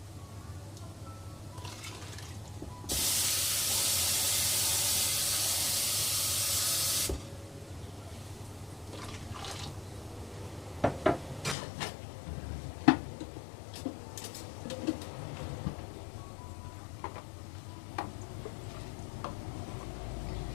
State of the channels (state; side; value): drops out; right; at 11.6 s